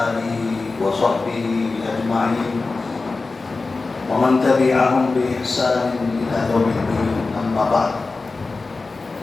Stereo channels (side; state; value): right; quieter; 3.8 dB